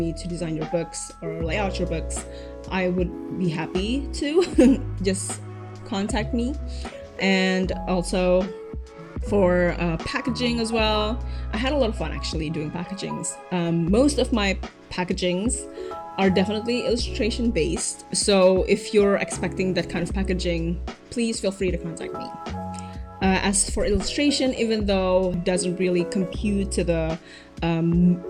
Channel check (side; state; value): both; identical; correlation 1.00